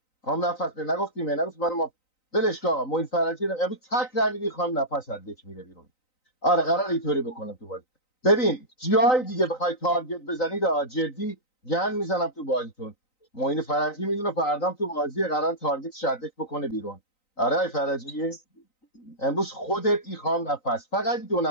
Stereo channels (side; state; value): right; late; 3.9 ms